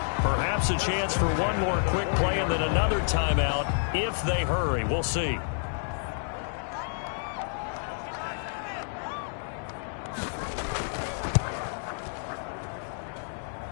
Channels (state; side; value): silent; right; digital silence